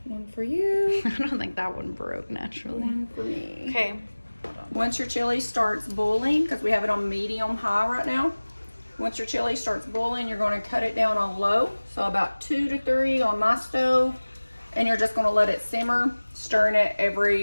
One for you. I don't think that one broke naturally. One for me. Okay. Once your chili starts boiling, because we have it on medium high right now. Once your chili starts boiling, you're going to cut it down on low. So about 2 to 3 on my stove. And you're just going to let it simmer, stirring it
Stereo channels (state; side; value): inverted; both; correlation -1.00